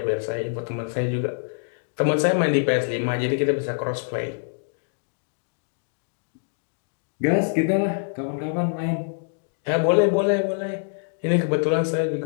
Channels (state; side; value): silent; right; digital silence